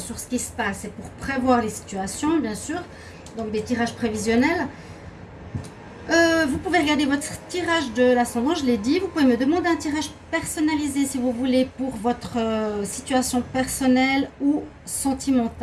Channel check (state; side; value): identical; both; correlation 1.00